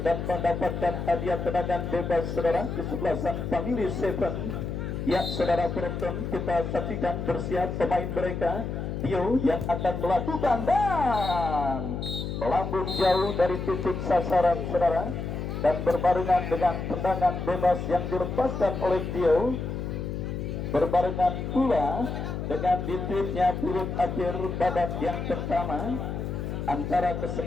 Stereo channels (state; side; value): noise; left; hum, 4 dB below the sound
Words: dan mendapatkan hadiah tendangan bebas saudara kesebelasan Family Seven. Ya saudara penonton, kita saksikan bersiap pemain mereka Tio yang akan melakukan dan melambung jauh dari titik sasaran saudara, dan berbarengan dengan tendangan bebas yang dilepaskan oleh Tio, berbarengan pula dengan ditipnya turut akhir babak yang pertama antara